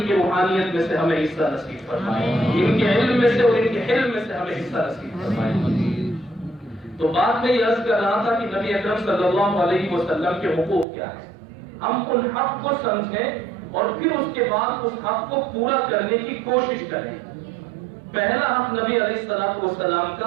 کی روحانیت میں سے ہمیں حصہ نصیب فرمائے، ان کے علم میں سے اور ان کے حلم میں سے ہمیں حصہ نصیب فرمائے. تو بات میں یہ عرض کر رہا تھا کہ نبی اکرم صلی اللہ علیہ وسلم کے حقوق کیا ہیں. ہم ان حق کو سمجھیں اور پھر اس کے بعد اس حق کو پورا کرنے کی کوشش کریں. پہلا حق نبی علیہ السلام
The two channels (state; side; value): drops out; left; at 10.9 s